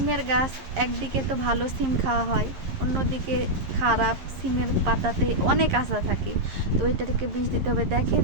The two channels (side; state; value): left; late; 11 ms